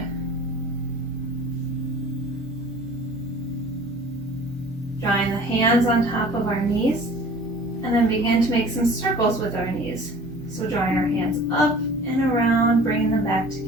Drawing the hands on top of our knees, and then begin to make some circles with our knees. So drawing our hands up and around, bringing them back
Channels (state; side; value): normal; both; correlation 0.46